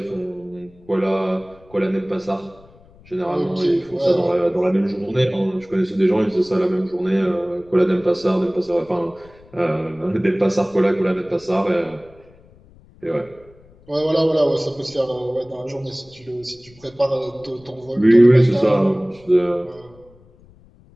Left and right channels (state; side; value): noise; left; rumble, 27 dB below the sound